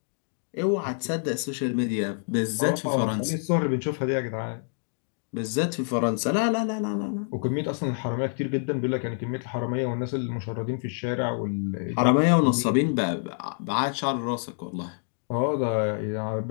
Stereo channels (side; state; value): right; silent; 60 dB below the other